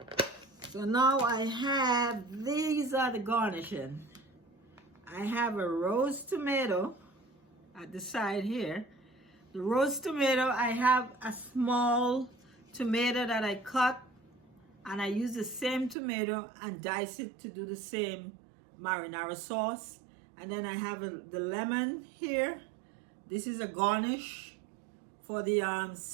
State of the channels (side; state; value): left; drops out; at 16.0 s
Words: So now I have, these are the garnishing. I have a roast tomato at the side here. The roast tomato, I have a small tomato that I cut, and I use the same tomato and dice it to do the same marinara sauce. And then I have the lemon here. This is a garnish for the